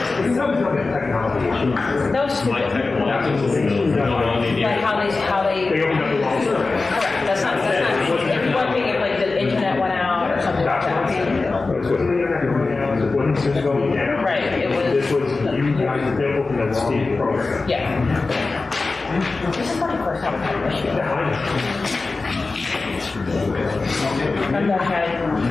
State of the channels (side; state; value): right; quieter; 3.7 dB